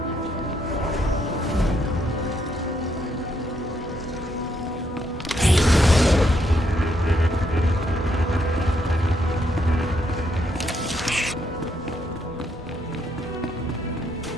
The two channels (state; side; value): normal; both; correlation 0.75